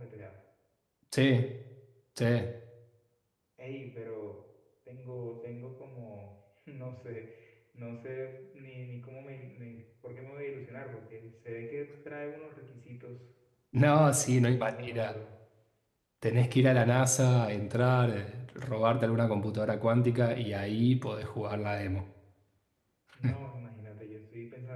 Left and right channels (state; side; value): identical; both; correlation 1.00